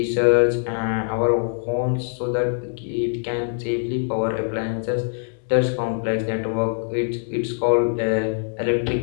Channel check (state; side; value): silent; right; 63 dB below the other